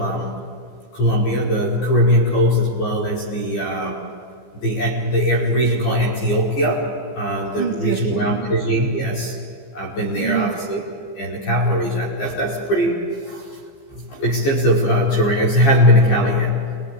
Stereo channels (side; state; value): right; late; 15 ms